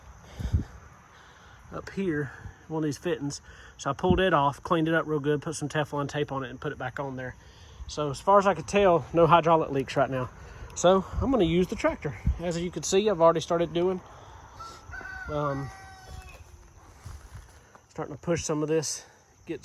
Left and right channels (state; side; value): identical; both; correlation 1.00